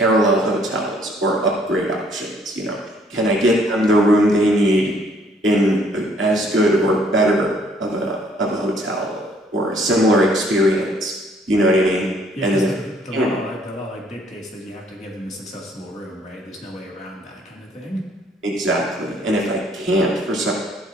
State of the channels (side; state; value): both; normal; correlation 0.63